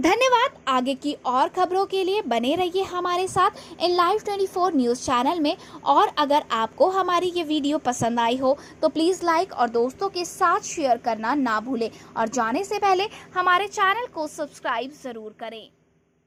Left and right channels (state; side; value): identical; both; correlation 1.00